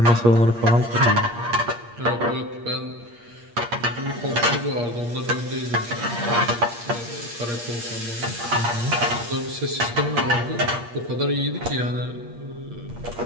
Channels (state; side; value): late; left; 8.5 ms